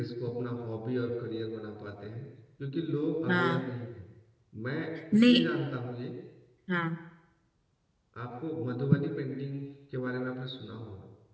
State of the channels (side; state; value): both; identical; correlation 1.00